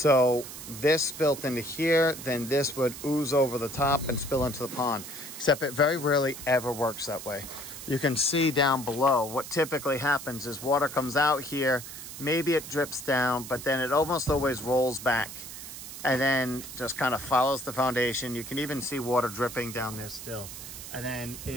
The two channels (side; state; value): right; noise; hiss, 11 dB below the sound